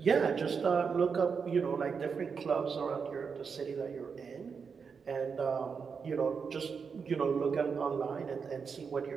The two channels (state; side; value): quieter; left; 5.9 dB